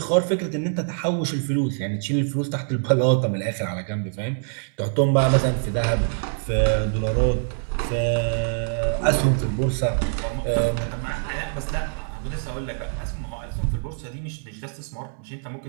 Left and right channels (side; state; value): left; silent; digital silence